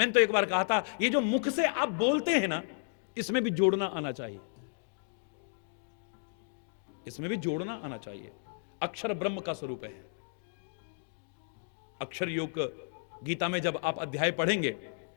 तो एक बार कहा था, ये जो मुख से आप बोलते हैं ना, इसमें भी जोड़ना आना चाहिए, इसमें भी जोड़ना आना चाहिए। अक्षर ब्रह्म का स्वरूप है। अक्षर योग गीता में जब आप अध्याय पढ़ेंगे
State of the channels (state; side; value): silent; right; digital silence